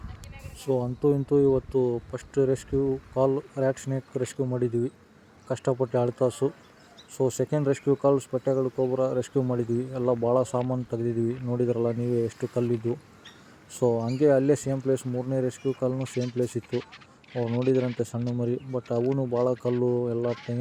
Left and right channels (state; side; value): identical; both; correlation 1.00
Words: ಸೊ ಅಂತೂ ಇಂತೂ ಇವತ್ತು ಫಸ್ಟ್ ರೆಸ್ಕ್ಯೂ ಕಾಲ್ ರ್ಯಾಟ್ ಸ್ನೇಕ್ ರೆಸ್ಕ್ಯೂ ಮಾಡಿದ್ದೀವಿ, ಕಷ್ಟಪಟ್ಟು 2 ತಾಸು. ಸೊ ಸೆಕೆಂಡ್ ರೆಸ್ಕ್ಯೂ ಕಾಲ್ ಸ್ಪೆಟ್ಟೆಗಳು ಕೊಬ್ರಾ ರೆಸ್ಕ್ಯೂ ಮಾಡಿದ್ವಿ, ಎಲ್ಲ ಭಾಳ ಸಾಮಾನು ತೆಗೆದಿದ್ದೀವಿ. ನೋಡಿದ್ರಲ್ಲ ನೀವೇ ಎಷ್ಟು ಕಲ್ಲಿದ್ದು. ಸೊ ಹಂಗೆ ಅಲ್ಲೇ ಸೇಮ್ ಪ್ಲೇಸ್ 3ನೇ ರೆಸ್ಕ್ಯೂ ಕಾಲ್ನೂ ಸೇಮ್ ಪ್ಲೇಸ್ ಇತ್ತು. ಅವ್ರು ನೋಡಿದ್ರಂತೆ ಸಣ್ಣ ಮರಿ, ಬಟ್ ಅವೂ ಭಾಳ ಕಲ್ಲು ಎಲ್ಲ